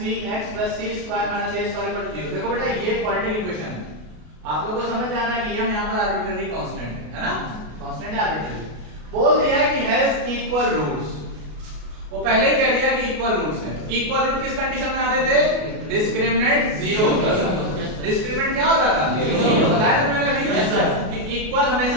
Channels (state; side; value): late; left; 33 ms